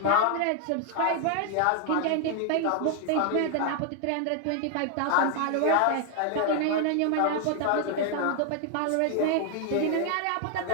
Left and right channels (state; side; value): different; both; correlation 0.00